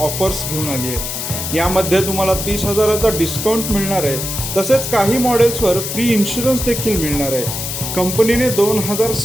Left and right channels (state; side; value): noise; left; hiss, 4 dB below the sound